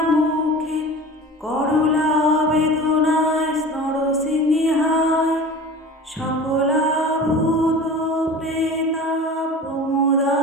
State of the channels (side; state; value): both; normal; correlation 0.37